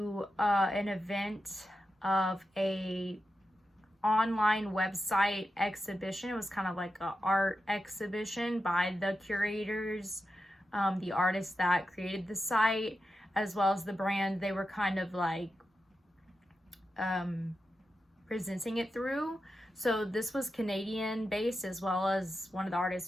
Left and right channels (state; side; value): normal; both; correlation 0.89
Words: an event of a online website exhibition. It was kind of like an art exhibition by the curators, the artists that created the site, as well as the brand they were kind of like presenting it through. So this was Canadian based, as well as one of the